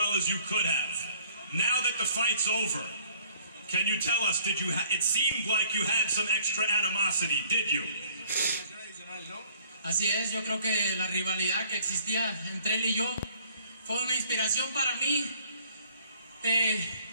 as you could have. Now that the fight's over, can you tell us, it seemed like you had some extra animosity, did you? Así es, yo creo que la rivalidad que existía entre él y yo fue una inspiración para mí,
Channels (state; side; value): inverted; both; correlation -0.58